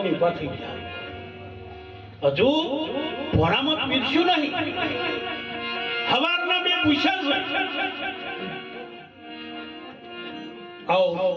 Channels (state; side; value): identical; both; correlation 1.00